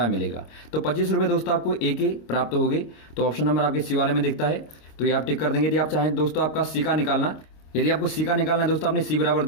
मिलेगा। तो 25 रुपये दोस्तों आपको a के प्राप्त हो गए। तो ऑप्शन नंबर आपके सी वाले में दिखता है, तो ये आप टिक कर देंगे। यदि आप चाहें दोस्तों आपका सी का निकालना, यदि आपको सी का निकालना है दोस्तों, आपने सी बराबर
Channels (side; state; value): right; late; 26 ms